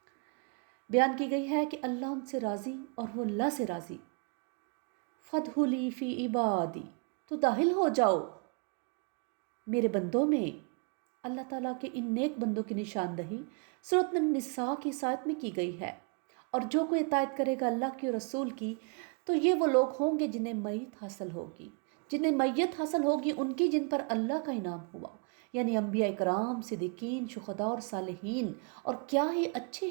بیان کی گئی ہے کہ اللہ ان سے راضی اور وہ اللہ سے راضی۔ فَادْخُلِی فِی عِبَادِی، تو داخل ہو جاؤ میرے بندوں میں۔ اللہ تعالیٰ کے ان نیک بندوں کی نشاندہی سورۃ النساء کی اس آیت میں کی گئی ہے، اور جو کوئی اطاعت کرے گا اللہ کی اور رسول کی تو یہ وہ لوگ ہوں گے جنہیں میت حاصل ہوگی، جنہیں میت حاصل ہوگی ان کی جن پر اللہ کا انعام ہوا، یعنی انبیاء کرام، صدیقین، شہداء اور صالحین، اور کیا ہی اچھے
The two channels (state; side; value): quieter; left; 35.1 dB